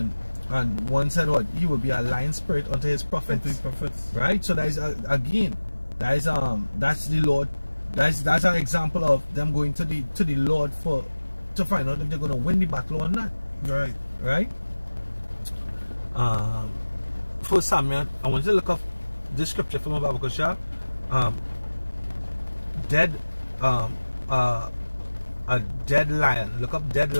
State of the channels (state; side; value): inverted; both; correlation -1.00